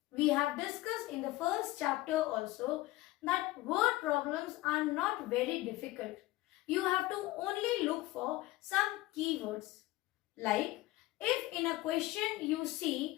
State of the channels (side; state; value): right; quieter; 18.1 dB